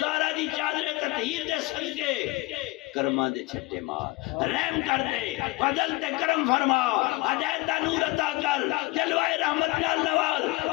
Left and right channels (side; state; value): right; quieter; 21.6 dB